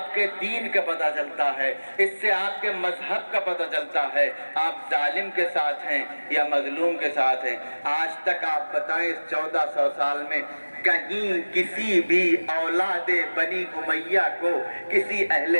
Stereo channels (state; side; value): inverted; both; correlation -1.00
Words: کے دین کا پتہ چلتا ہے، اس سے آپ کے مذہب کا پتہ چلتا ہے، آپ ظالم کے ساتھ ہیں یا مظلوم کے ساتھ ہیں۔ آج تک آپ بتائیں اس 1400 سال میں کہیں کسی بھی اولاد بنی امیہ کو کسی اہل